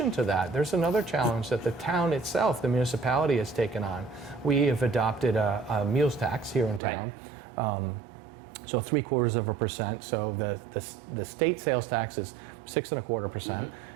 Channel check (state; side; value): drops out; left; at 6.8 s